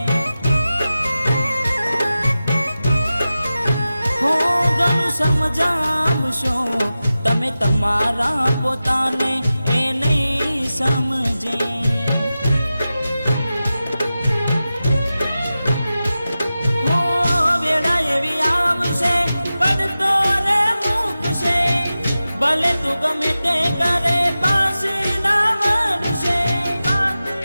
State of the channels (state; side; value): inverted; both; correlation -0.94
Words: હો ઘણું સમજાવશો તમે તમારા પોતાને એ નહીં સમજે, હો વેળા એવી આવશે પડતો રે મૂકશે, ભલે તું ગમે તે કરે પાછી ના વળશે,